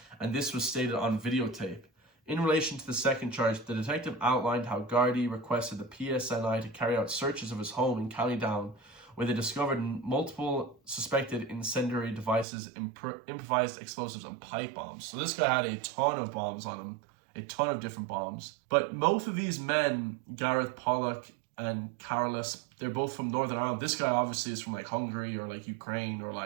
and this was stated on videotape. In relation to the second charge, the detective outlined how Gardaí requested the PSNI to carry out searches of his home in County Down, where they discovered multiple suspected incendiary devices, improvised explosives, and pipe bombs. So this guy had a ton of bombs on him, a ton of different bombs. But both of these men, Gareth Pollock and Carolus, they're both from Northern Ireland. This guy obviously is from like Hungary or like Ukraine, or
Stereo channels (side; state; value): left; drops out; at 12.5 s